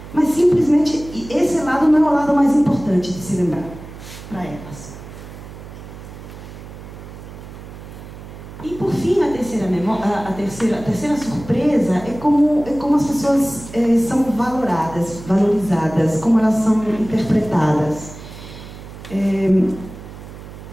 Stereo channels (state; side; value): noise; right; hum, 14 dB below the sound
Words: mas simplesmente esse lado não é o lado mais importante de se lembrar para elas. E por fim, a terceira surpresa é como as pessoas são valorizadas, como elas são interpretadas.